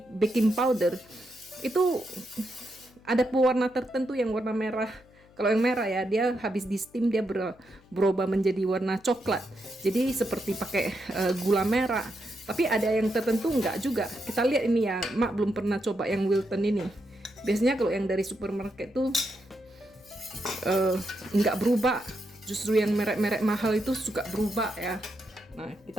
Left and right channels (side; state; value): left; noise; hum, 28 dB below the sound